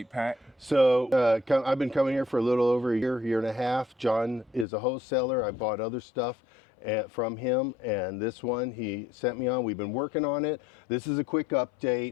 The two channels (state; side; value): drops out; right; at 4.7 s